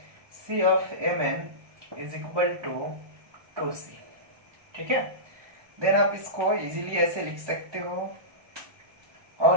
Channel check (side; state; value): left; late; 1.2 ms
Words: C of Mn is equal to 2C। ठीक है, देन आप इसको इजीली ऐसे लिख सकते हो,